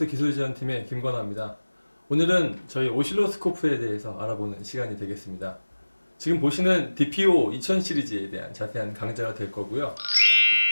기술지원팀의 김건아입니다. 오늘은 저희 오실로스코프에 대해서 알아보는 시간이 되겠습니다. 지금 보시는 DPO 2000 시리즈에 대한 자세한 강좌가 될 거고요.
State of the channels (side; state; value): both; inverted; correlation -1.00